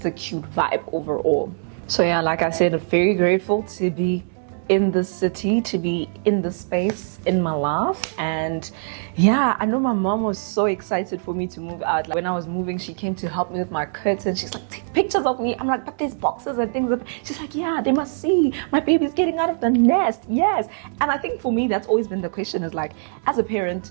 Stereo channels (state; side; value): silent; left; 64 dB below the other